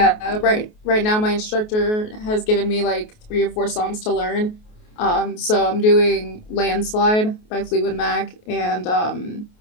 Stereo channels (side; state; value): right; late; 28 ms